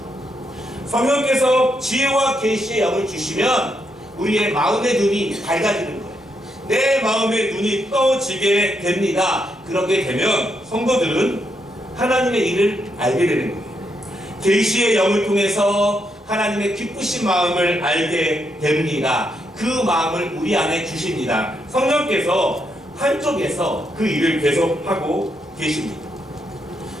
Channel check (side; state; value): both; normal; correlation 0.79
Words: 성령께서 지혜와 계시의 영을 주시면 우리의 마음의 눈이 밝아지는 거예요. 내 마음의 눈이 떠지게 됩니다. 그렇게 되면 성도들은 하나님의 일을 알게 되는 거예요. 계시의 영을 통해서 하나님의 기쁘신 마음을 알게 됩니다. 그 마음을 우리 안에 주십니다. 성령께서 한쪽에서 그 일을 계속하고 계십니다.